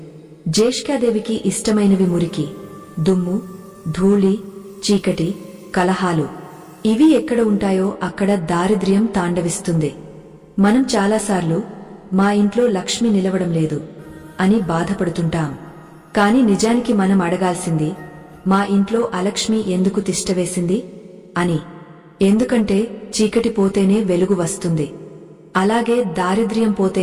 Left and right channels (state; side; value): identical; both; correlation 1.00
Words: జ్యేష్ఠాదేవికి ఇష్టమైనవి మురికి, దుమ్ము, ధూళి, చీకటి, కలహాలు. ఇవి ఎక్కడ ఉంటాయో అక్కడ దారిద్ర్యం తాండవిస్తుంది. మనం చాలాసార్లు మా ఇంట్లో లక్ష్మి నిలవడం లేదు అని బాధపడుతుంటాం. కాని నిజానికి మనం అడగాల్సింది, మా ఇంట్లో అలక్ష్మి ఎందుకు తిష్టవేసింది అని. ఎందుకంటే చీకటి పోతేనే వెలుగు వస్తుంది, అలాగే దారిద్ర్యం